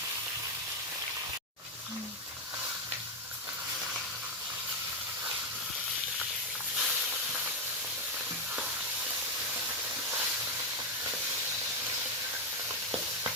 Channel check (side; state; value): both; normal; correlation 0.04